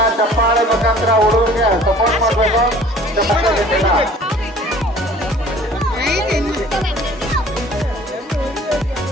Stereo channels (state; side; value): normal; both; correlation 0.50